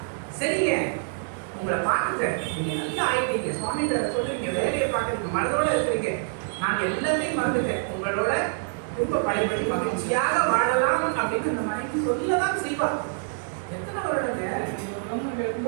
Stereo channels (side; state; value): left; silent; digital silence